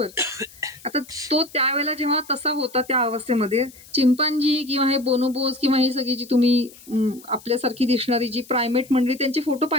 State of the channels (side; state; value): left; noise; hiss, 22 dB below the sound